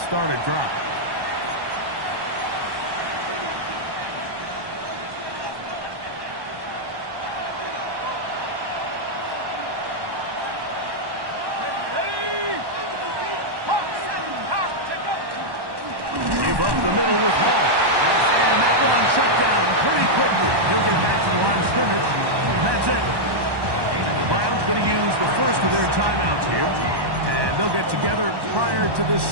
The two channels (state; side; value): late; left; 1.1 ms